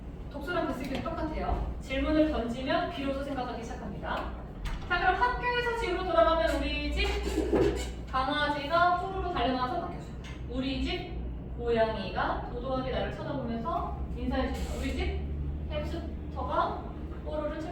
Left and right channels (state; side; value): identical; both; correlation 1.00